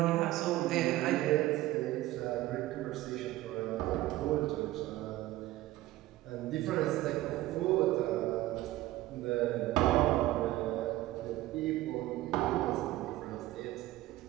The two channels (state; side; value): quieter; left; 16.6 dB